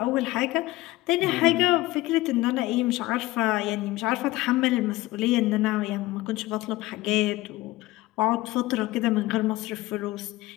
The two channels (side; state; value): right; quieter; 18.6 dB